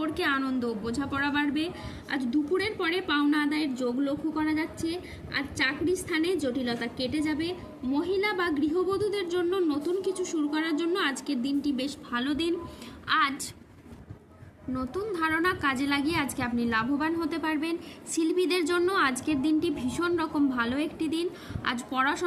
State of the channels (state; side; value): identical; both; correlation 1.00